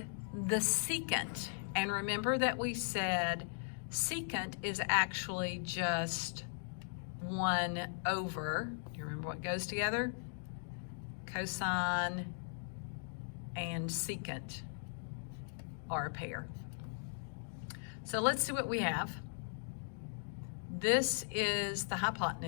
the secant. And remember that we said secant is actually just 1 over, do you remember what goes together? Cosine and secant are a pair. So let's see what we have. This is the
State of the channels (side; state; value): right; silent; digital silence